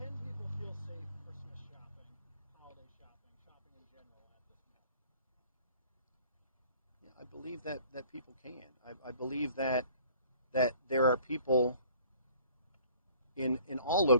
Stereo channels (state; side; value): inverted; both; correlation -0.53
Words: people feel safe Christmas shopping, holiday shopping in general at this mall? Yeah, I believe that people can. I believe that there are people in all